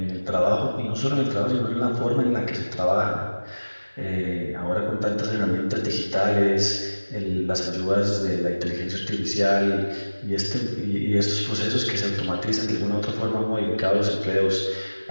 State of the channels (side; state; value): both; inverted; correlation -1.00